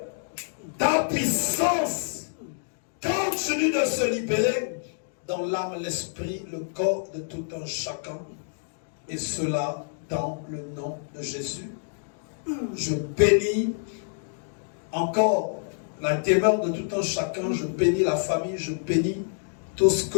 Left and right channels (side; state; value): right; silent; digital silence